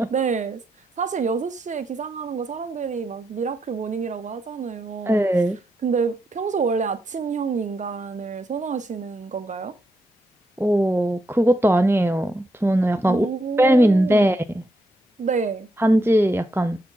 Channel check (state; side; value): normal; both; correlation 0.81